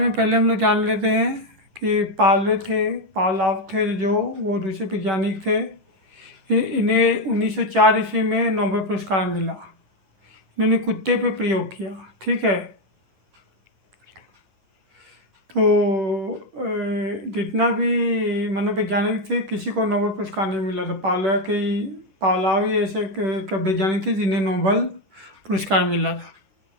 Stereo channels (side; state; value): left; late; 10 ms